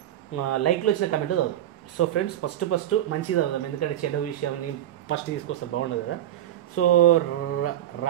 లైక్లో వచ్చిన కమెంట్ చదువుదాం. సో ఫ్రెండ్స్ ఫస్ట్ మంచిగా చదువుదాం, ఎందుకంటే చెడ్డ విషయాన్ని ఫస్ట్ తీసుకొస్తే బాగుండదు కదా. సో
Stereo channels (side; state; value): left; quieter; 12.3 dB